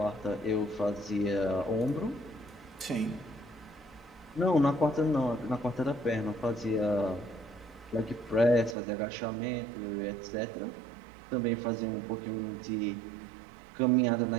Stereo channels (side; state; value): left; drops out; at 8.8 s